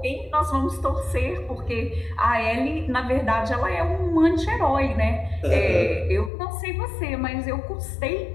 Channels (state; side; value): drops out; right; at 6.3 s